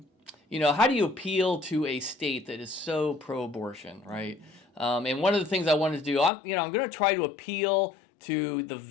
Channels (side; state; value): right; drops out; at 6.3 s